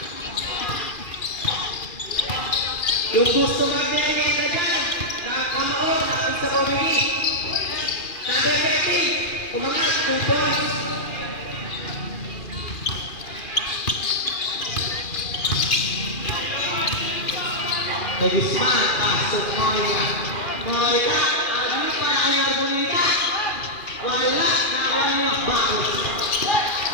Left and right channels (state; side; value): late; right; 2.4 ms